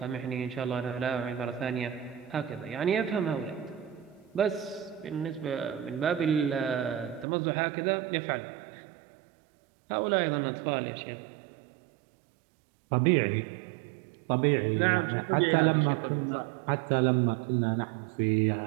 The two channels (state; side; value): drops out; left; at 7.2 s